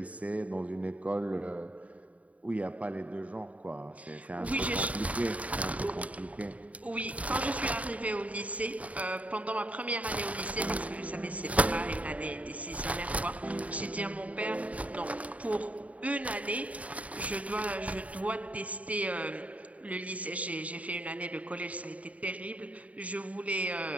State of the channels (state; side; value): late; left; 0.068 ms